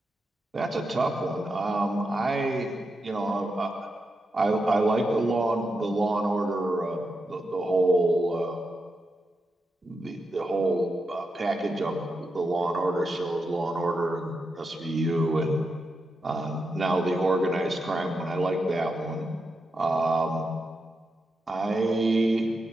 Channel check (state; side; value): normal; both; correlation 0.86